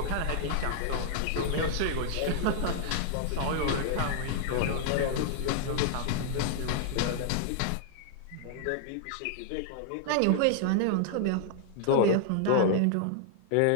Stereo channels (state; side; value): different; both; correlation -0.01